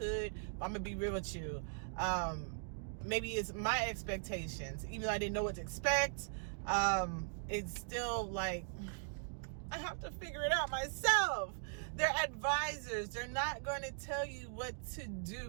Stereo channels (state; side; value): silent; left; digital silence